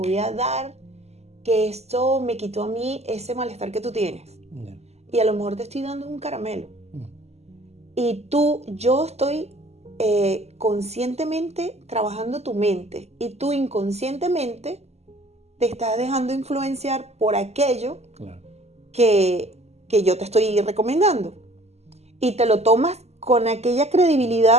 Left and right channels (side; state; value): left; late; 0.31 ms